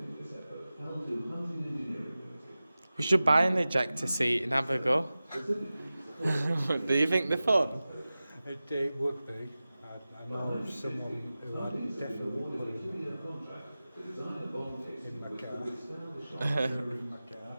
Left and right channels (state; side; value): inverted; both; correlation -0.96